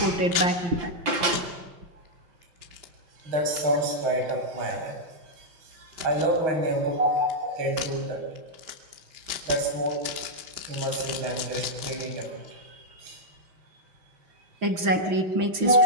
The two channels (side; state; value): left; late; 5.8 ms